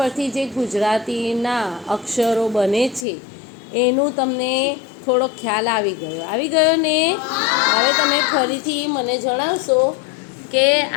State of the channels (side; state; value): right; drops out; at 3.1 s